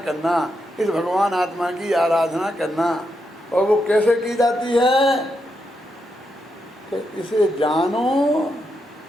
इस भगवान आत्मा की आराधना करना। और वो कैसे की जाती है? कि इसे जानो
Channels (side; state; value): both; normal; correlation 0.83